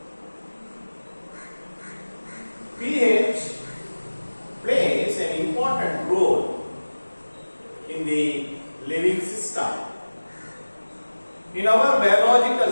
pH plays an important role in the living system. In our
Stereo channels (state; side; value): inverted; both; correlation -1.00